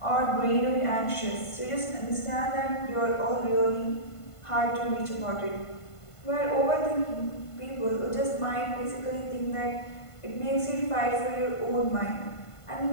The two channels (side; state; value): right; late; 1.5 ms